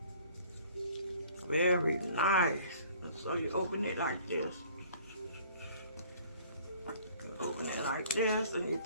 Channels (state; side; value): inverted; both; correlation -0.53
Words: Very nice. And so you open it like this. You open it like this, and you